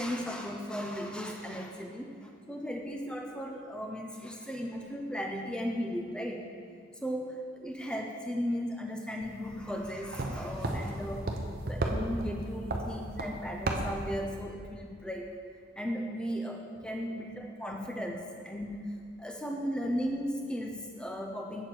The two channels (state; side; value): normal; both; correlation 0.76